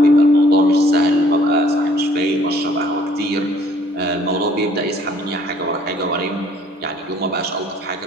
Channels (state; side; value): normal; both; correlation 0.60